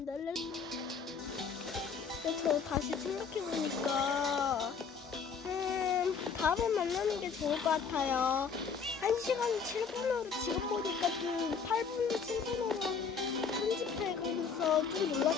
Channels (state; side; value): quieter; right; 5.8 dB